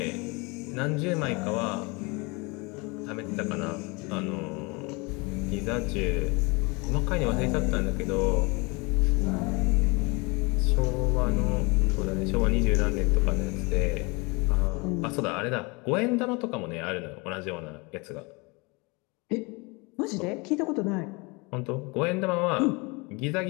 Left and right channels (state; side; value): quieter; right; 27.8 dB